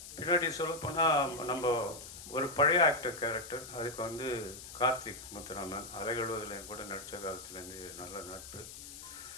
பின்னாடி சொல்லப்போனால் நம்ம ஒரு பழைய ஆக்டர் கேரக்டர், அதுக்கு வந்து கார்த்திக் முத்துராமன் அலைகழுவதில் கூட நடித்த காலத்துலேருந்து நல்ல நட்பு.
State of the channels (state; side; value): noise; left; hiss, 13 dB below the sound